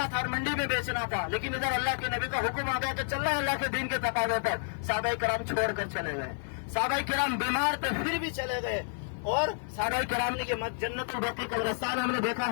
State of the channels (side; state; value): right; silent; digital silence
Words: تھا اور منڈی میں بیچنا تھا, لیکن ادھر اللہ کے نبی کا حکم آ گیا کہ چلنا ہے اللہ کے دین کے تقاضے پر. صحابہ کرام چھوڑ کر چلے گئے. صحابہ کرام بیمار تھے پھر بھی چلے گئے. اور صحابہ کرام نے کہ جنت البقیع قبرستان ہم نے دیکھا